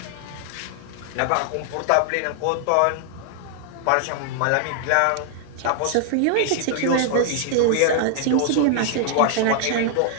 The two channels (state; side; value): different; both; correlation -0.01